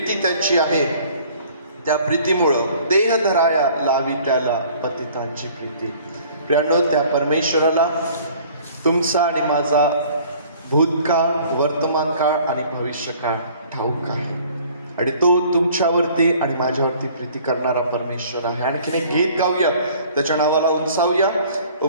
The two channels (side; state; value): both; inverted; correlation -0.53